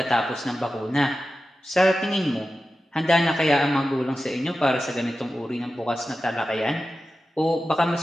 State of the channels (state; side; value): normal; both; correlation 0.93